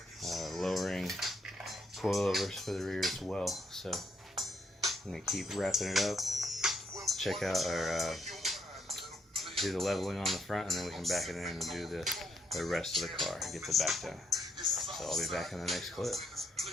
lowering coilovers for the rear as well. So I'm gonna keep wrapping it up, check out our do the leveling on the front, and then we can back it in and do the rest of the car and get the back done. So I'll be back in the next clip.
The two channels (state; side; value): normal; both; correlation 0.75